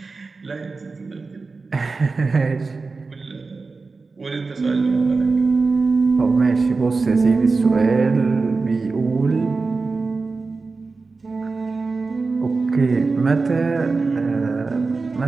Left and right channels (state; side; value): quieter; left; 4.1 dB